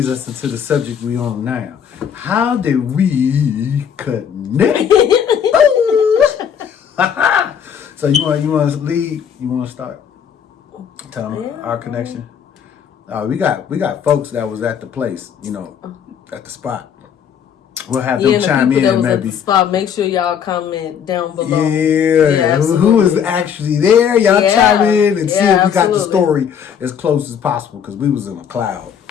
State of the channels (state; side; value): quieter; right; 8.0 dB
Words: us into the subject we on now. How did we connect? So you want to lead? You want to start? Tell them our connection. We got folks that was at the place, at the spot. We'll have them chime in, that was maybe. At the spot, make sure y'all comment down below. Yeah, who was actually there? Y'all chime in and see if we got the story as close as possible, because we was in a cloud,